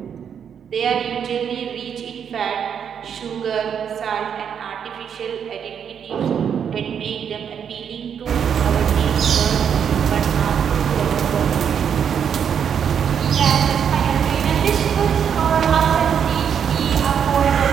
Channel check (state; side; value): quieter; left; 7.9 dB